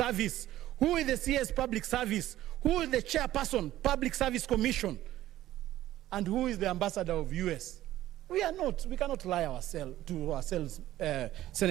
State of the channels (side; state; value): left; quieter; 14.2 dB